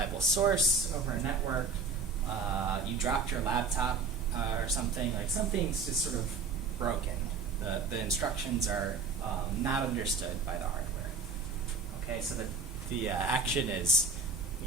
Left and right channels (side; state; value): left; quieter; 4.6 dB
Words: source over a network. You dropped your laptop or something. Like something's just sort of broken. The instructions are not understood by the hardware. Okay, so the action is,